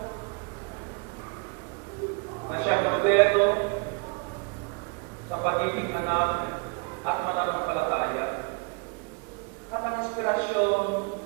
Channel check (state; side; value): quieter; left; 34.3 dB